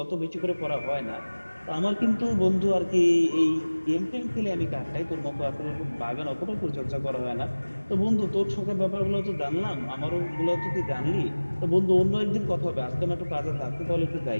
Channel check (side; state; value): both; inverted; correlation -1.00